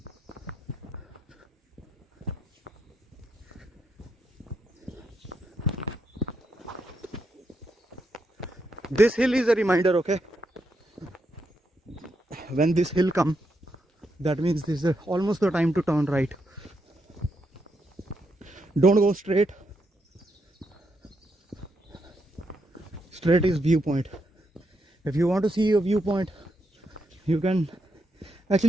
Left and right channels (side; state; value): both; normal; correlation 0.81